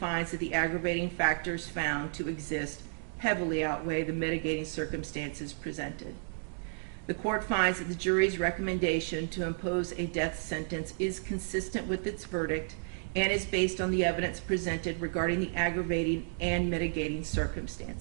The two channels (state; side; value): silent; left; digital silence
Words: that the aggravating factors found to exist heavily outweigh the mitigating circumstances presented. The court finds that the jury's recommendation to impose a death sentence is consistent with its verdict and is based on the evidence presented regarding the aggravating and mitigating